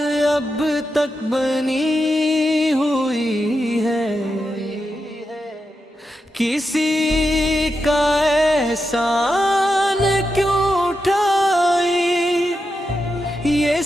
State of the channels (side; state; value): both; normal; correlation 0.87